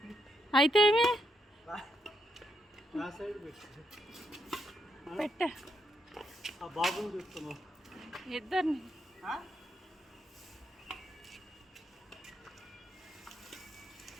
అయితే ఏమి పెట్టా ఇద్దరిని.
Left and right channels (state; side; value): normal; both; correlation 0.79